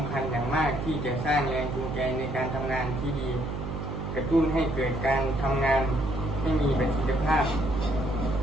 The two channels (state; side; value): noise; right; hum, 4 dB below the sound